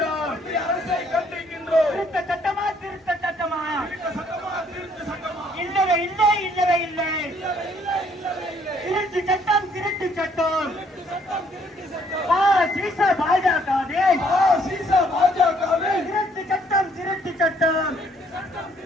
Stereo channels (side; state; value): both; normal; correlation 0.65